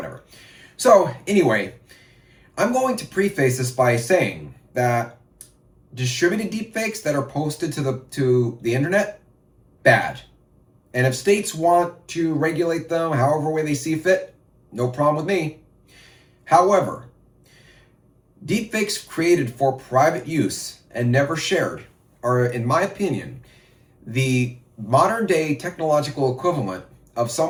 So anyway, I'm going to preface this by saying that distributed deepfakes that are posted to the internet, bad. And if states want to regulate them however way they see fit, no problem with me. However, deepfakes created for private use and never shared are, in my opinion, the modern day technological equivalent of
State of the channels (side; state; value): both; identical; correlation 1.00